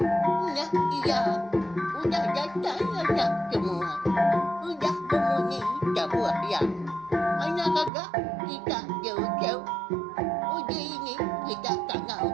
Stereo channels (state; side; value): drops out; left; at 7.9 s